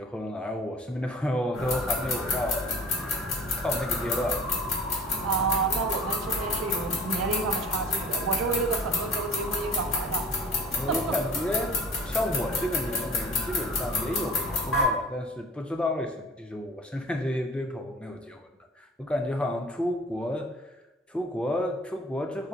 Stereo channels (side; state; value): both; normal; correlation 0.45